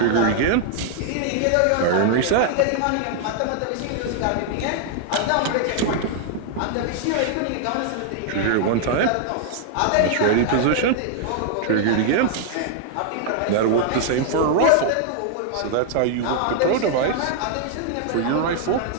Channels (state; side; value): different; both; correlation 0.00